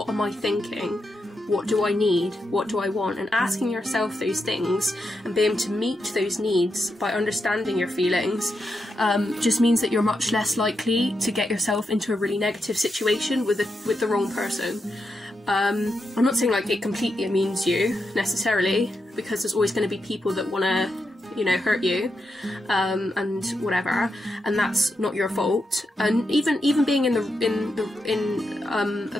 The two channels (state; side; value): normal; both; correlation 0.85